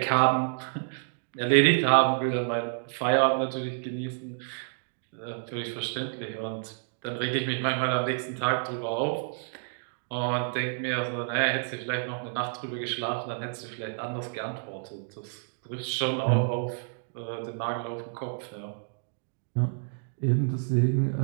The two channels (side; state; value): left; silent; digital silence